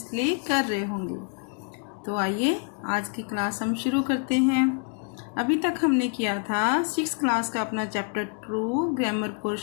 कर रहे होंगे। तो आइए आज की क्लास हम शुरू करते हैं। अभी तक हमने किया था 6th क्लास का अपना चैप्टर 2 ग्रामर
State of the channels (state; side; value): quieter; right; 39.7 dB